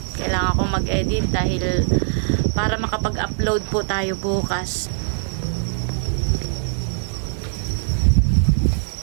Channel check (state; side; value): silent; left; digital silence